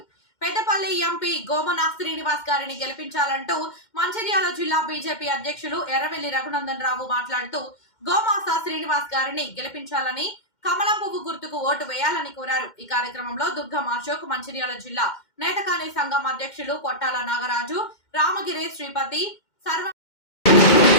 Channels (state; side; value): late; right; 2.1 ms